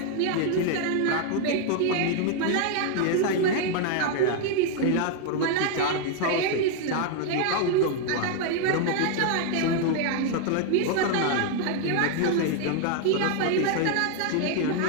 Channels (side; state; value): both; different; correlation 0.00